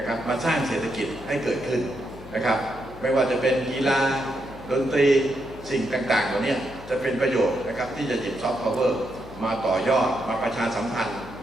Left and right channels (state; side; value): noise; left; hum, 18 dB below the sound